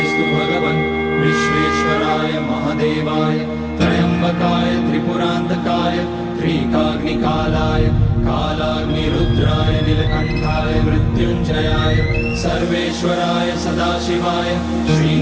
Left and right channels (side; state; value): both; identical; correlation 1.00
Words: भगवन् विश्वेश्वराय महादेवाय त्र्यम्बकाय त्रिपुरान्तकाय त्रिकाग्निकालाय कालाग्निरुद्राय नीलकण्ठाय मृत्युञ्जयाय सर्वेश्वराय सदाशिवाय